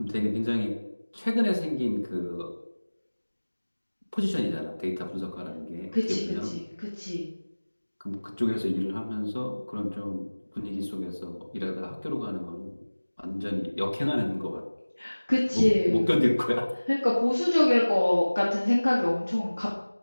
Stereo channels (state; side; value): inverted; both; correlation -1.00